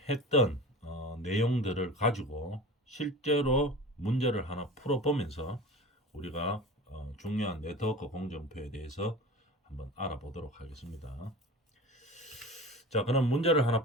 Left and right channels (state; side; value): normal; both; correlation 0.34